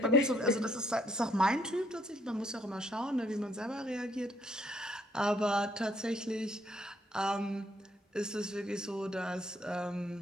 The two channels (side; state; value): both; normal; correlation 0.68